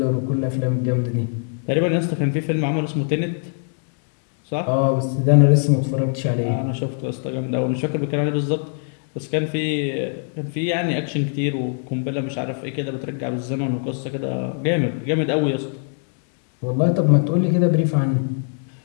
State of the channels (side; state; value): right; silent; 64 dB below the other